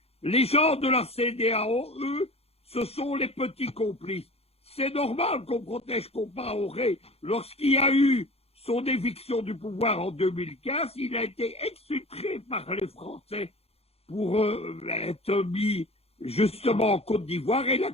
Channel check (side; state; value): right; late; 0.29 ms